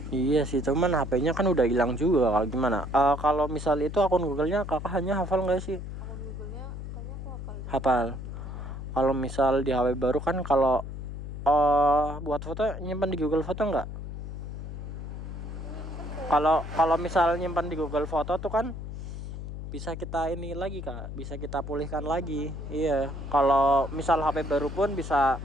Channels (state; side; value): noise; left; hum, 8 dB below the sound